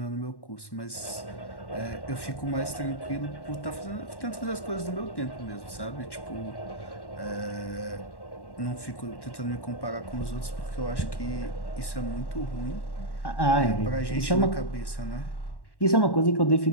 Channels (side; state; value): right; late; 1.1 ms